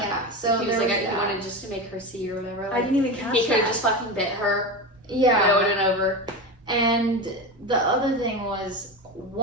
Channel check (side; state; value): both; normal; correlation 0.22